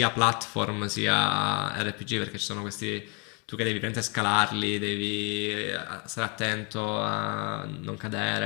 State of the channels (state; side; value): quieter; right; 32.7 dB